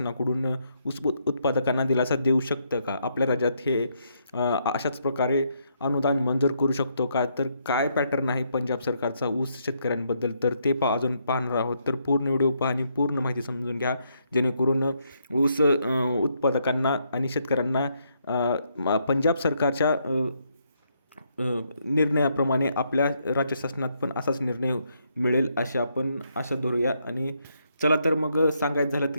ऊस उत्पादकांना दिलासा देऊ शकतं का? आपल्या राज्यात हे अशाच प्रकारे अनुदान मंजूर करू शकतो का? काय पॅटर्न आहे पंजाब सरकारचा ऊस शेतकऱ्यांबद्दल, तर ते अजून पाहणार आहोत. पूर्ण व्हिडिओ पहा आणि पूर्ण माहिती समजून घ्या, जेणेकरून ऊस उत्पादकांना आणि शेतकऱ्यांना पंजाब सरकारच्या निर्णयाप्रमाणे आपल्या राज्य शासनात पण असाच निर्णय मिळेल अशी आपण आशा धरूया. आणि चला तर मग सांगायचं झालं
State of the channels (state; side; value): inverted; both; correlation -0.75